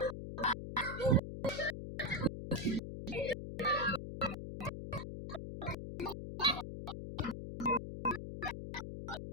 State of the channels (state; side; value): noise; left; hum, 7 dB below the sound